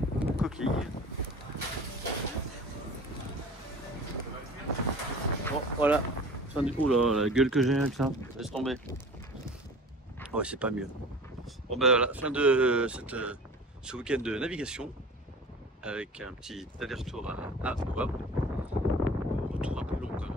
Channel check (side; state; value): both; normal; correlation 0.41